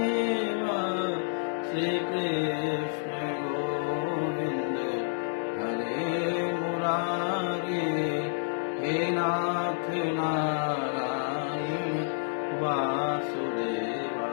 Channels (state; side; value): silent; right; digital silence